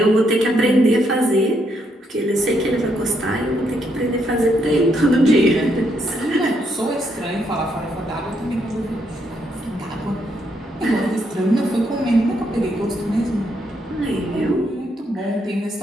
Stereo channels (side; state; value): both; normal; correlation 0.75